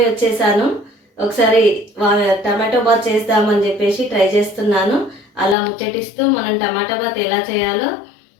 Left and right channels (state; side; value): drops out; right; at 5.6 s